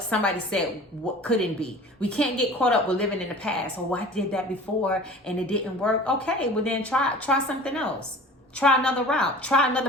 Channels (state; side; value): normal; both; correlation 0.42